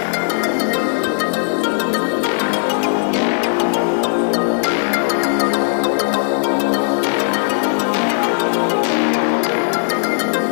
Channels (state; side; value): silent; right; digital silence